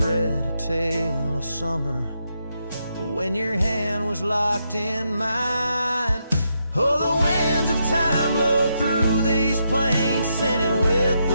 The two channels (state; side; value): inverted; both; correlation -0.81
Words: a tale of summer when your hand was locked in mine. Oh, the winds of time blow through these plains, scented with